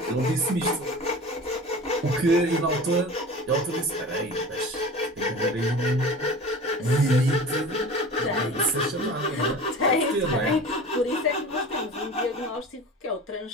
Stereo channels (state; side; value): normal; both; correlation 0.37